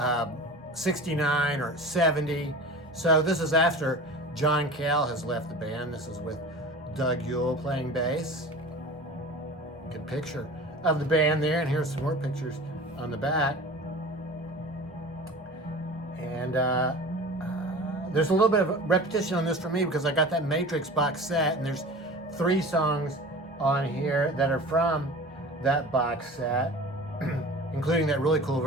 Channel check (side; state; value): both; normal; correlation 0.37